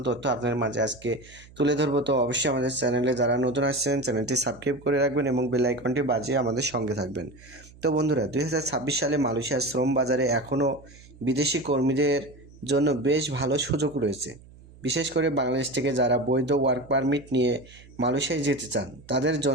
তথ্য আপনাদের মাঝে আজকে তুলে ধরবো। তো অবশ্যই আমাদের চ্যানেলে যারা নতুন আসছেন চ্যানেলটি সাবস্ক্রাইব করে রাখবেন এবং বেল আইকনটি বাজিয়ে আমাদের সঙ্গে থাকবেন। তো বন্ধুরা, 2026 সালে মালয়েশিয়ার শ্রম বাজারে এখনও বিদেশি কর্মীদের জন্য বেশ ভালো সুযোগ রয়েছে। বিশেষ করে বাংলাদেশ থেকে যারা বৈধ ওয়ার্ক পারমিট নিয়ে মালয়েশিয়ায় যেতে চান, তাদের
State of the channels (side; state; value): right; noise; hum, 22 dB below the sound